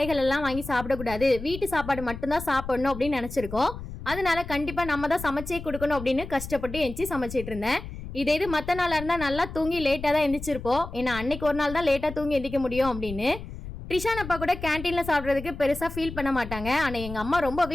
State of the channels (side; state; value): left; noise; rumble, 11 dB below the sound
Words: எல்லாம் வாங்கி சாப்பிடக்கூடாது, வீட்டு சாப்பாடு மட்டும்தான் சாப்பிடணும் அப்படின்னு நினச்சிருக்கோம். அதனால கண்டிப்பாக நம்ம தான் சமைச்சே கொடுக்கணும் அப்படின்னு கஷ்டப்பட்டு எழுந்துச்சி சமைச்சிட்டு இருந்தேன். இது மற்ற நாளாக இருந்தால் நல்லா தூங்கி லேட்டாக தான் எந்திரிச்சிருப்போம். ஏன்னா அன்னைக்கு ஒரு நாள் தான் லேட்டாக தூங்கி எந்திரிக்க முடியும் அப்படின்னு. ட்ரிஷான் அப்பா கூட கேன்டீனில் சாப்பிட்றதுக்கு பெருசாக ஃபீல் பண்ண மாட்டாங்க. ஆனால் எங்கள் அம்மா